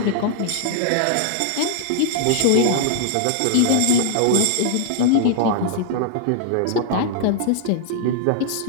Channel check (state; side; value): different; both; correlation -0.01